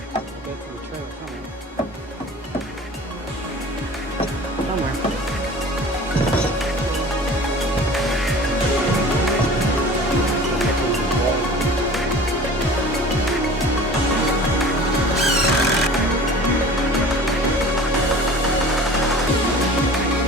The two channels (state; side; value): normal; both; correlation 0.42